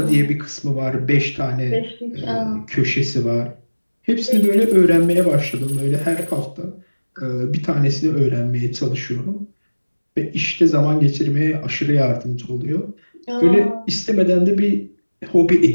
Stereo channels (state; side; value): inverted; both; correlation -1.00